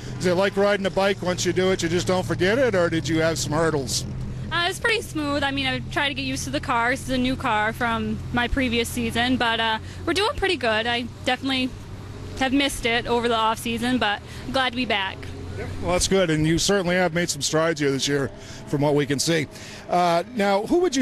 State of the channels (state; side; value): identical; both; correlation 1.00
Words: is it like riding a bike? Once you do it, you just don't forget it, or did you have some hurdles? It was pretty smooth. I mean, I tried to get used to the car. This is a new car from my previous season, but we're doing pretty good. I definitely have missed it over the off season, but I'm glad to be back. Well, that's good, and you certainly have made some strides here this year from what we can see. Now, who would you